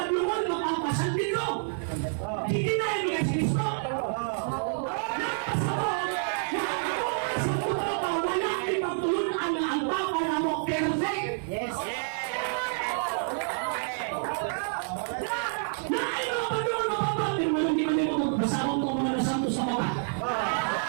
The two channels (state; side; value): silent; left; 59 dB below the other